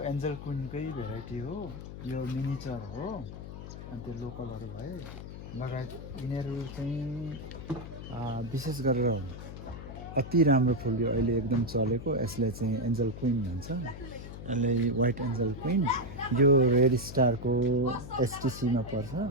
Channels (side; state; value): left; noise; hum, 11 dB below the sound